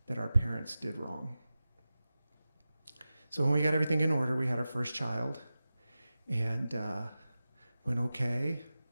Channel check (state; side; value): inverted; both; correlation -0.94